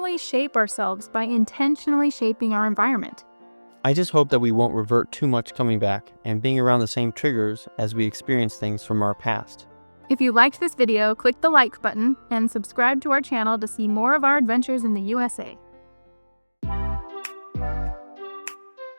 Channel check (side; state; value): both; inverted; correlation -1.00